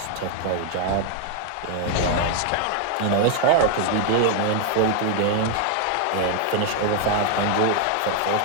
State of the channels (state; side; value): different; both; correlation 0.01